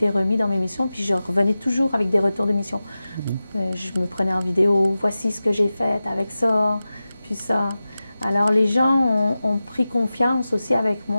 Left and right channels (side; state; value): both; inverted; correlation -0.95